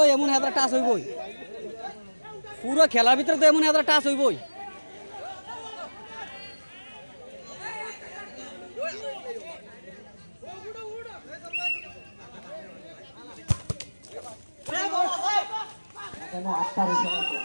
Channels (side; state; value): both; inverted; correlation -1.00